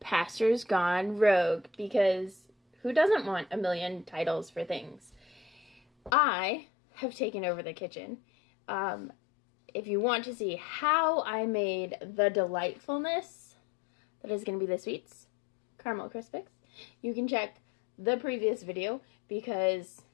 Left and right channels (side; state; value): right; drops out; at 6.1 s